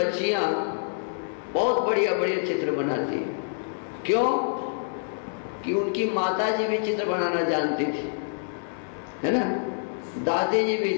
बहुत बढ़िया बढ़िया चित्र बनाती हैं। क्यों? कि उनकी माता जी भी चित्र बनाना जानती थी, है ना? दादी जी भी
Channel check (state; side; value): silent; right; 60 dB below the other